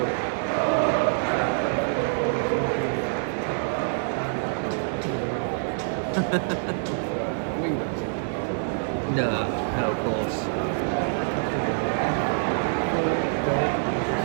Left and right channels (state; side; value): silent; left; 61 dB below the other